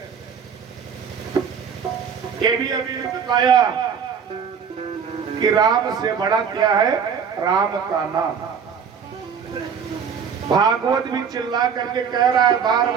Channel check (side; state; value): left; quieter; 6.9 dB